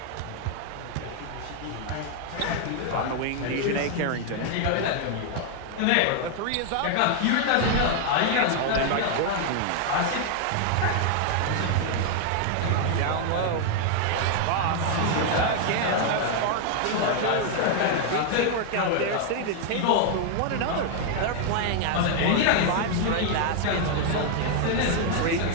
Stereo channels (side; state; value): both; different; correlation 0.00